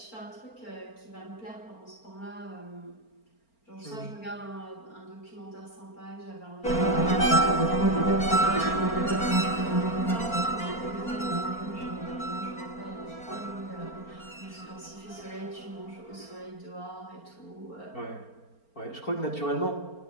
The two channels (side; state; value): right; late; 4.4 ms